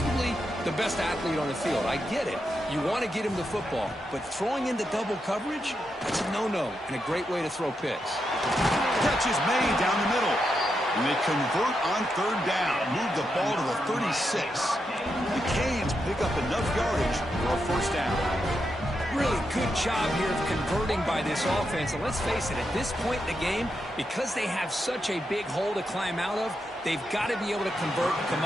the best athlete on the field. I get it. You want to get him the football, but throwing into double coverage, that's a no-no and a great way to throw picks. Catch is made down the middle. And they convert on third down, move the ball to the 36. The Canes pick up enough yardage for a first down. Really good job here of converting by this offense. And let's face it, at this point in the game, because they have such a big hole to climb out of, they've got to be able to convert and come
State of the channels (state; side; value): normal; both; correlation 0.84